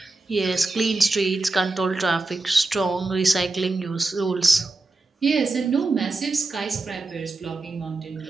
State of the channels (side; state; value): left; quieter; 3.2 dB